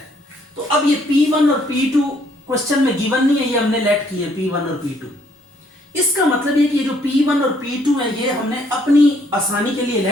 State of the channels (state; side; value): normal; both; correlation 0.67